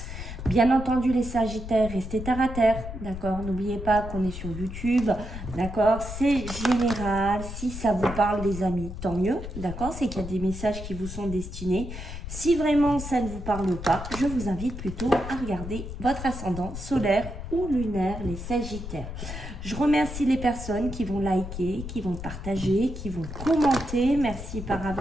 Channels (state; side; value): noise; left; rumble, 8 dB below the sound